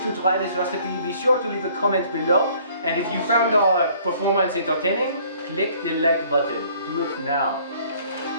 try this recipe, be sure to leave a comment below. And if you found our performance entertaining, click the like button. Do it now.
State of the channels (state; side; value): inverted; both; correlation -0.58